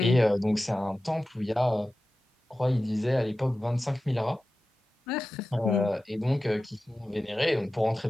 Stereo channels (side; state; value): both; normal; correlation 0.94